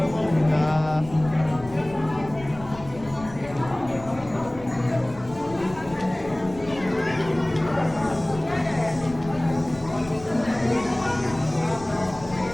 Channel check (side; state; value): left; noise; rumble, 17 dB below the sound